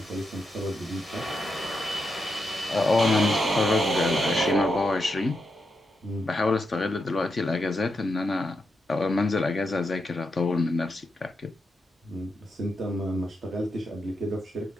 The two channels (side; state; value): both; normal; correlation 0.84